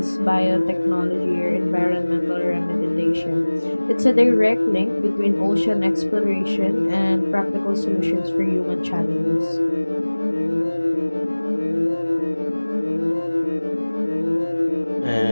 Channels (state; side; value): inverted; both; correlation -1.00